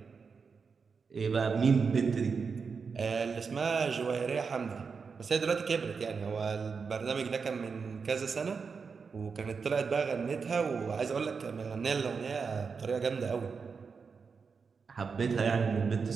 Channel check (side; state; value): left; quieter; 5.4 dB